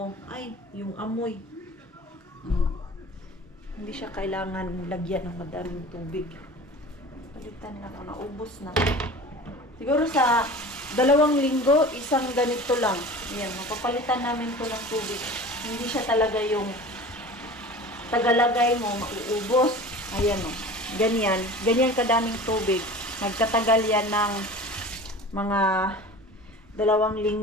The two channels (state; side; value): normal; both; correlation 0.38